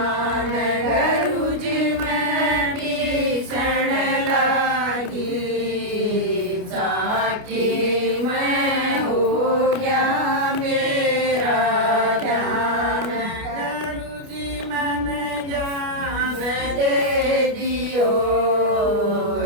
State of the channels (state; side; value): late; left; 29 ms